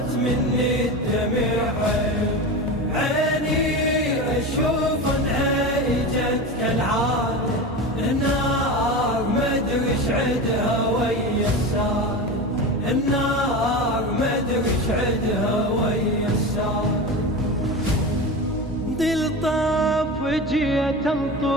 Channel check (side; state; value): both; normal; correlation 0.25